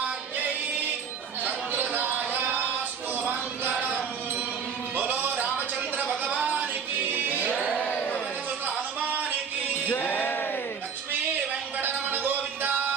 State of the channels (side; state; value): left; quieter; 6.5 dB